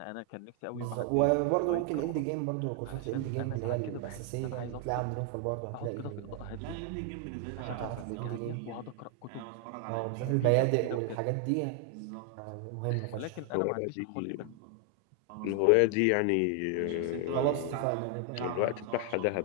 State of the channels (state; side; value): different; both; correlation 0.00